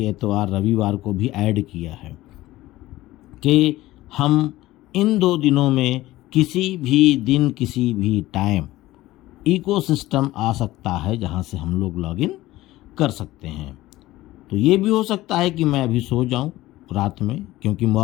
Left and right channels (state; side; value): quieter; right; 17.0 dB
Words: एतवार रविवार को भी ऐड किया है कि हम इन 2 दिनों में किसी भी दिन किसी भी टाइम इकोसिस्टम आ सकता है जहां से हम लोग लॉगिन कर सकते हैं। तो ये भी हो सकता है कि मैं अभी सो जाऊं रात में, क्योंकि